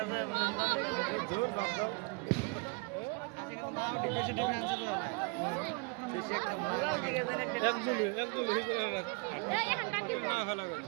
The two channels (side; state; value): left; quieter; 32.1 dB